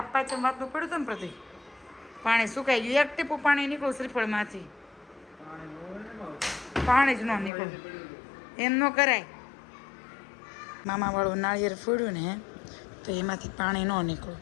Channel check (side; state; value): right; drops out; at 7.5 s